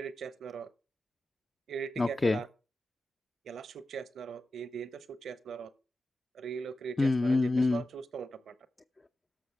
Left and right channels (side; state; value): both; normal; correlation 0.92